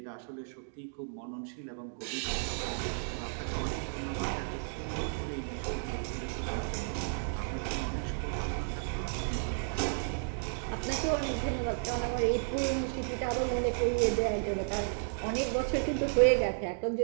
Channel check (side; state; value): left; silent; digital silence